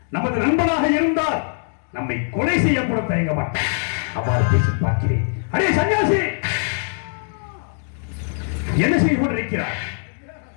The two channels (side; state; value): right; silent; 64 dB below the other